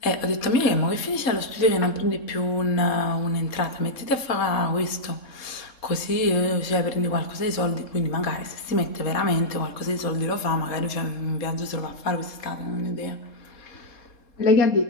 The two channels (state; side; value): late; right; 3.7 ms